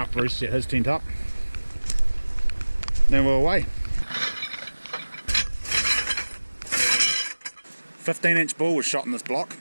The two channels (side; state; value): both; inverted; correlation -1.00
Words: Bruce set his tent up. Then we're away. 15-inch bull was shot in this block